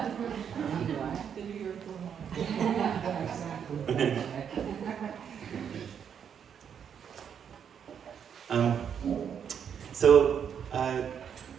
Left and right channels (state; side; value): quieter; left; 7.9 dB